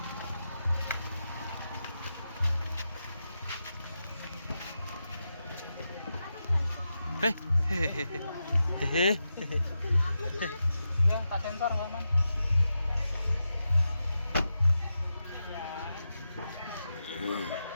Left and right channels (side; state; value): both; inverted; correlation -0.88